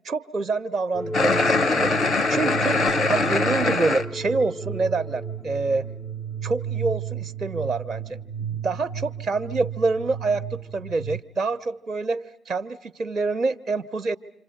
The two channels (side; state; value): both; normal; correlation 0.73